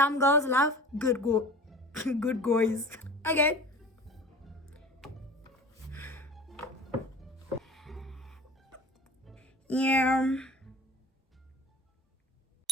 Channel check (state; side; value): normal; both; correlation 0.40